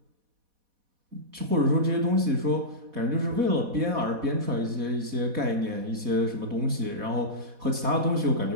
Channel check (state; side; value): late; left; 4.1 ms